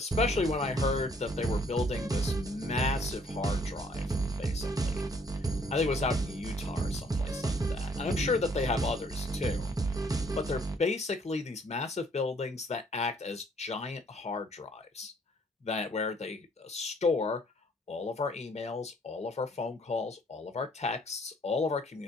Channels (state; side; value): normal; both; correlation 0.63